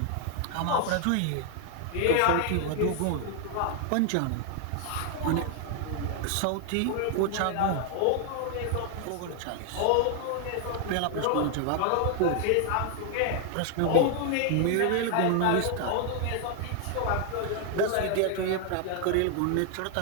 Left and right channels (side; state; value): both; different; correlation 0.00